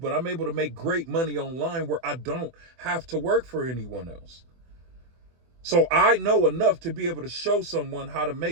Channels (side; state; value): left; late; 24 ms